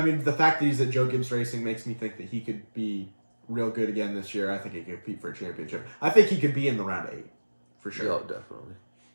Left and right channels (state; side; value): inverted; both; correlation -1.00